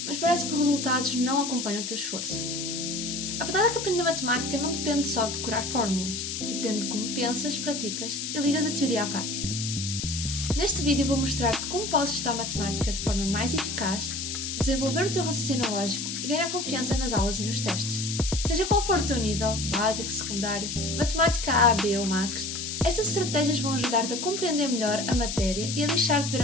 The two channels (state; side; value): noise; left; hiss, 4 dB below the sound